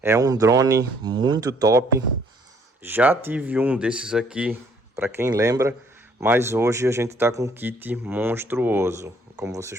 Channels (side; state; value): both; normal; correlation 0.63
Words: é um drone muito top. Já tive um desses aqui, para quem lembra, mas hoje a gente está com um kit monstruoso. Como